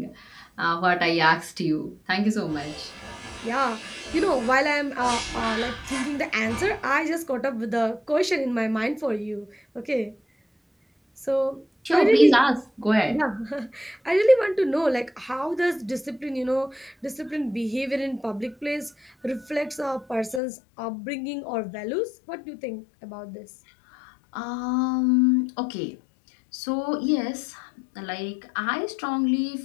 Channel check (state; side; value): drops out; right; at 20.4 s